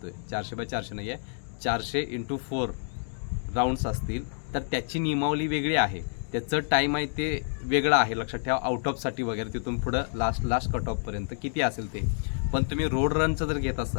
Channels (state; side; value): silent; right; digital silence